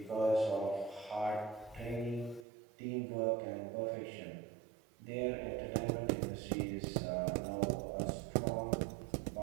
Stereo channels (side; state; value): left; drops out; at 2.5 s